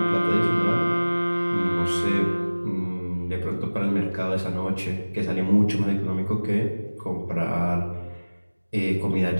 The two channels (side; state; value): both; inverted; correlation -1.00